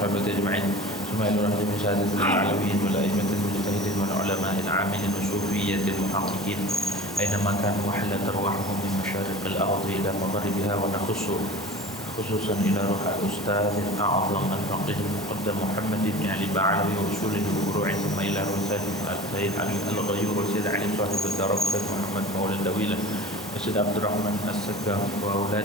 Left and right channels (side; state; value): both; normal; correlation 0.37